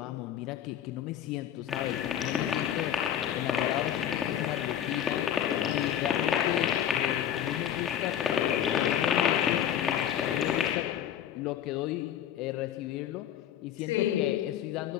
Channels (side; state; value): right; quieter; 10.2 dB